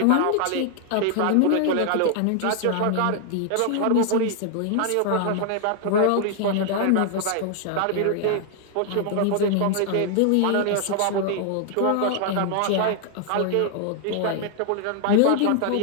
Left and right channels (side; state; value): both; different; correlation 0.00